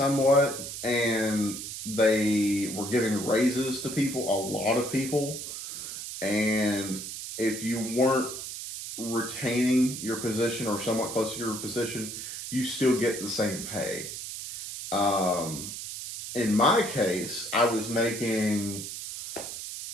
and they were giving raises to people, a lot of people. And if you weren't retaining your position or somewhat close to your position, you still get the same pay. In my case, I was making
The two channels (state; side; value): noise; right; hiss, 8 dB below the sound